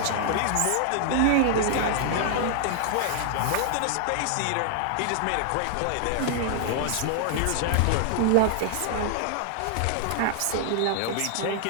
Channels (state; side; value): different; both; correlation 0.00